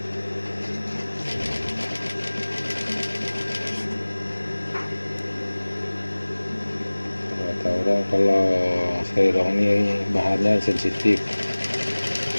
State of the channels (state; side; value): inverted; both; correlation -1.00